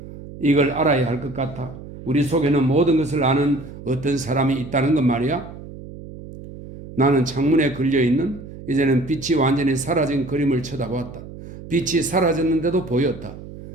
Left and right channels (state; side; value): noise; right; hum, 14 dB below the sound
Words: 이걸 알아야 할 것 같아. 우리 속에는 모든 것을 아는 어떤 사람이 있다는 것 말이야. 나는 창문에 걸려있는 이제는 빛이 완전히 사라진 그림을 쳐다보았다. 빛이 사라졌는데도 보였다.